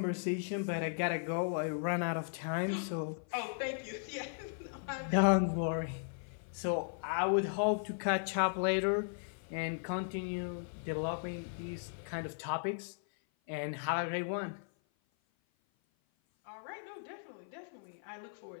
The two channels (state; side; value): silent; right; 53 dB below the other